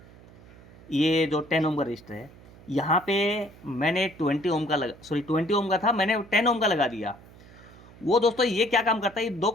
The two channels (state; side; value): noise; right; hum, 22 dB below the sound